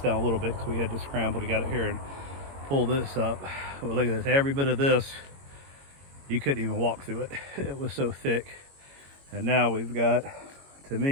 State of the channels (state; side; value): late; left; 22 ms